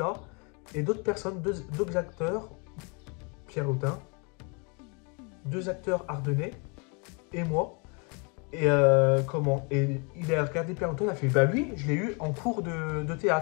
et d'autres personnes, d'autres acteurs, Pierre Lotin, 2 acteurs ardennais et moi. Et comment? Et il a regardé Pierre Lotin, il a fait, bah lui, je l'ai eu en cours de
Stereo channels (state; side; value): quieter; right; 33.5 dB